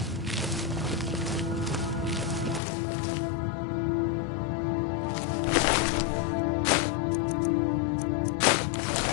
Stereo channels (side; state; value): right; drops out; at 2.6 s